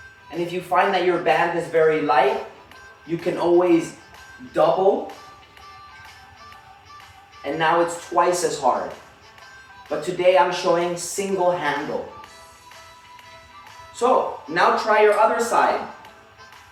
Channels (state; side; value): identical; both; correlation 1.00